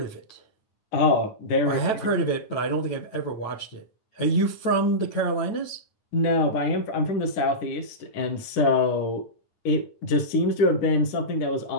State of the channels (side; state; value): right; late; 9.1 ms